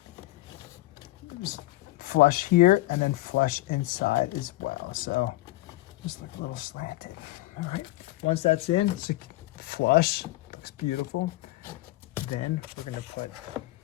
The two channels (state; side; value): quieter; right; 18.1 dB